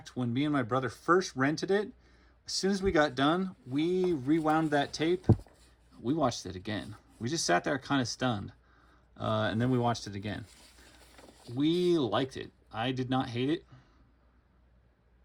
when me and my brother first rented it, as soon as we got done, we rewound that tape. We watched it again. We just sat there kind of stunned. And then we watched it again. We liked it. I did not hate it.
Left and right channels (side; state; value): both; identical; correlation 1.00